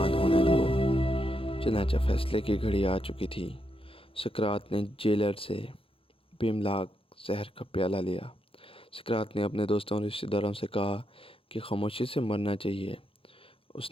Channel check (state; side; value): late; right; 0.27 ms